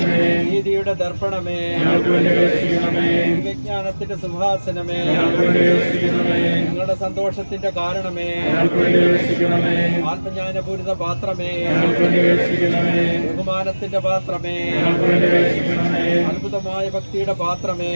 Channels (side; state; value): both; inverted; correlation -1.00